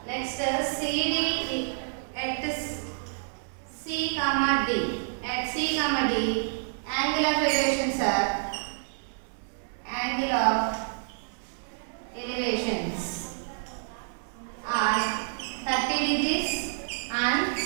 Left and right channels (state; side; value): silent; left; 59 dB below the other